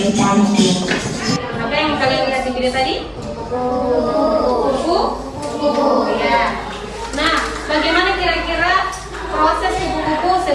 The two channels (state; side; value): identical; both; correlation 1.00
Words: cantik. Apa yang kalian lihat di video tadi? Kupu-kupu. Ya. Nah, bagaimana kira-kira proses kupu-kupu